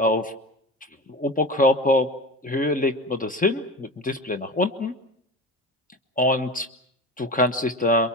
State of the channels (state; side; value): normal; both; correlation 0.28